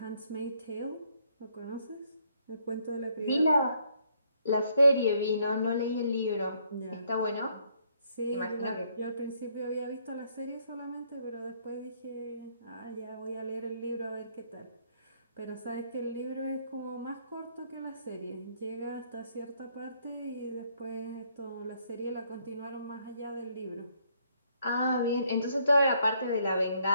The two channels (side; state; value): both; inverted; correlation -0.69